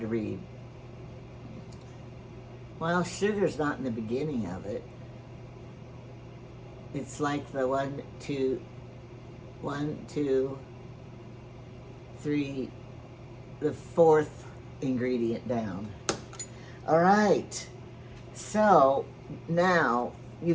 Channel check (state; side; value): identical; both; correlation 1.00